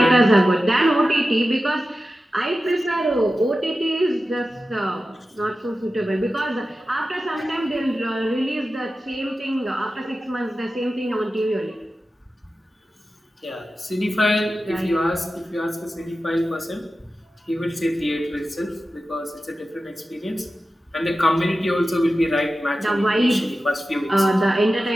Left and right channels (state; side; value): normal; both; correlation 0.93